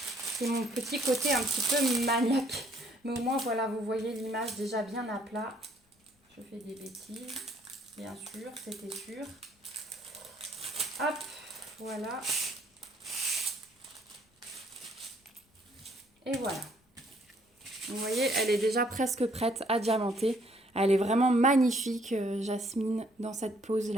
C'est mon petit côté un petit peu maniaque. Mais au moins, voilà, vous voyez l'image déjà bien à plat. Je fais des bêtises. Bien sûr, c'était sûr. Hop, voilà. Et voilà. Vous voyez, elle est déjà presque prête à diamanter. Elle est vraiment magnifique, Jasmine, dans cette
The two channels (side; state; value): both; normal; correlation 0.65